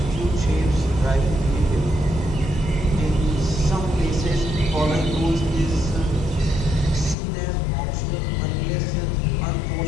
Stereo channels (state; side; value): drops out; right; at 7.2 s